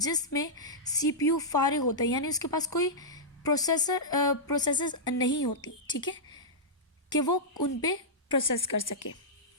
सीपीयू फारिग होता है, यानी उसके पास कोई प्रोसेसेस नहीं होती। ठीक है, कि वो उन पे प्रोसेस कर सके।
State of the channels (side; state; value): both; normal; correlation -0.12